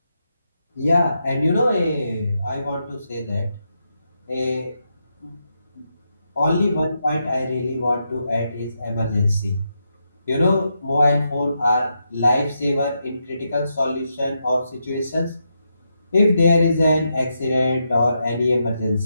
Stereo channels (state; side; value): inverted; both; correlation -0.84